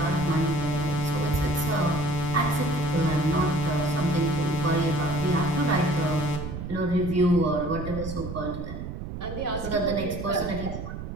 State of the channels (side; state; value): right; noise; rumble, 7 dB below the sound